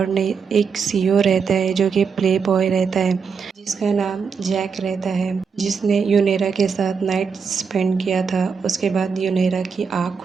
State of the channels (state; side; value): quieter; left; 5.9 dB